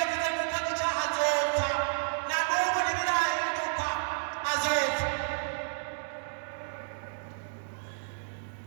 yavuze ngo ukoze icyaha azopfa, na n'ubu ntibirahinduka, azopfa.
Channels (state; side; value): silent; left; digital silence